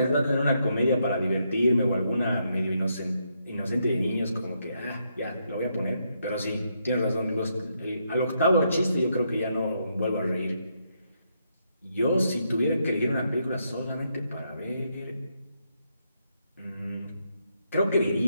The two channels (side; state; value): both; inverted; correlation -0.78